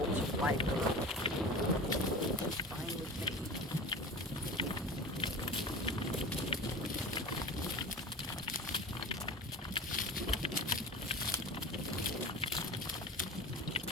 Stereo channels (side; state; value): both; normal; correlation 0.34